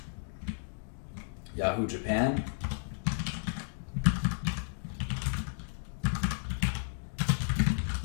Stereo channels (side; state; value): right; silent; digital silence